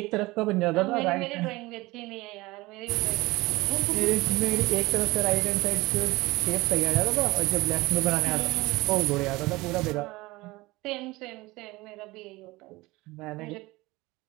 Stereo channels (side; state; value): left; quieter; 21.1 dB